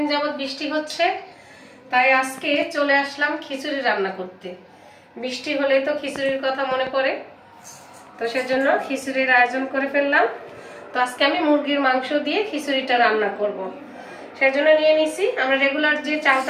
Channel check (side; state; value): both; identical; correlation 1.00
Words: যাবত বৃষ্টি হচ্ছে, তাই আজকে চলে আসলাম খিচুড়ি রান্না করতে। বৃষ্টি হলেই তো খিচুড়ির কথা মনে পড়ে, তো সেজন্য খিচুড়ির আয়োজন করে ফেললাম। তো আজকে আমি মুরগির মাংস দিয়ে খিচুড়িটা রান্না করব। সেজন্য নিয়ে নিছি আমরা রেগুলার যে